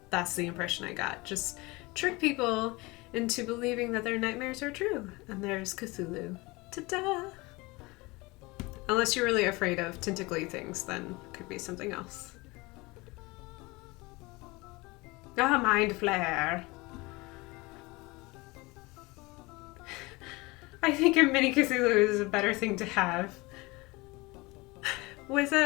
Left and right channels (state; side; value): quieter; right; 23.7 dB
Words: that's the impression I got. Just trick people into believing that their nightmares are true, and there's Cthulhu. Ta-da! Unless you're really afraid of tentacly things, then it could be something else. Ah, mind flare! I think a mini Cthulhu is a better thing to have. With